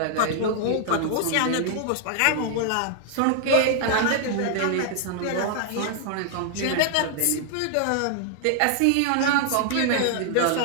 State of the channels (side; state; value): both; different; correlation 0.00